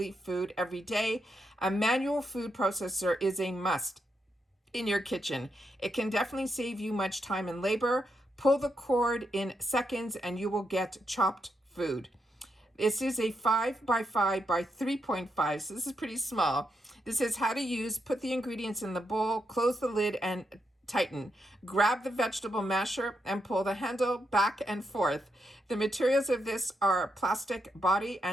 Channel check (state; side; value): normal; both; correlation 0.82